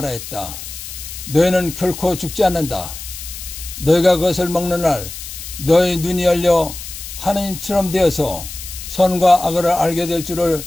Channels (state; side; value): noise; left; hiss, 11 dB below the sound